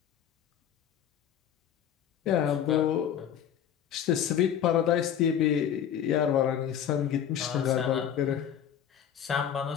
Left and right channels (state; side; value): quieter; right; 9.3 dB